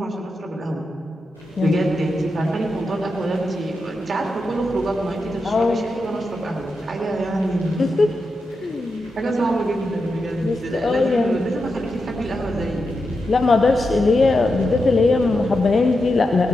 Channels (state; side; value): normal; both; correlation 0.88